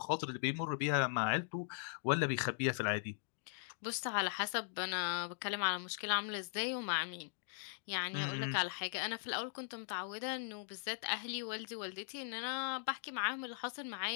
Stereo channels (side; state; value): right; silent; digital silence